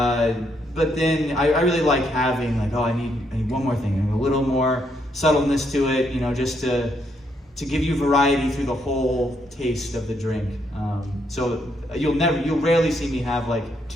then I really like having like, I need one more thing and a little more subtleness to it, just to give you variety through the whole taste of the drink. So you'll rarely see me have like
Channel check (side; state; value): both; normal; correlation 0.75